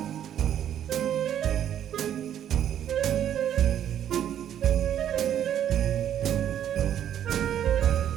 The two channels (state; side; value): quieter; left; 10.2 dB